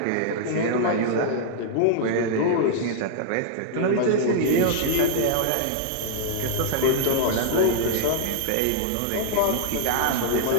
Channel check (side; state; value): both; different; correlation -0.01